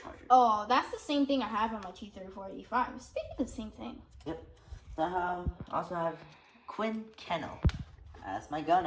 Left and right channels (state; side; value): identical; both; correlation 1.00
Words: Oh, that's the same thing I have on my T-34-85. It's basically the same thing. Yep. So I also have Quinn Kennel as my